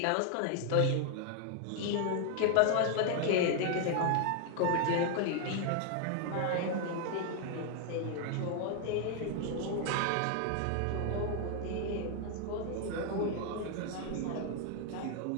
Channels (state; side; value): different; both; correlation 0.00